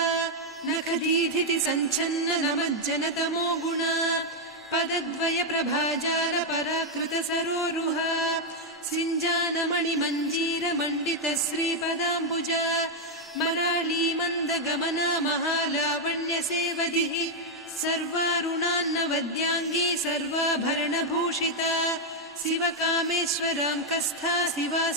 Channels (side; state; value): both; normal; correlation 0.00